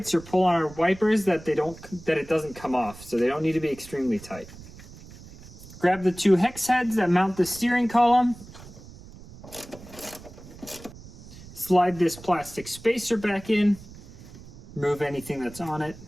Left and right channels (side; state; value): right; noise; rumble, 18 dB below the sound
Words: or pull on our wipers that it doesn't come off. So they don't need to be extremely tight. Grab the 2 hex heads that mount the steering column. Slide this plastic spacer back in. Remove anything that's on it.